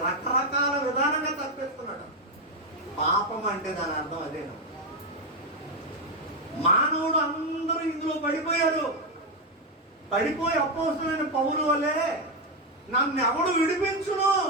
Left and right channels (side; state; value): both; normal; correlation 0.06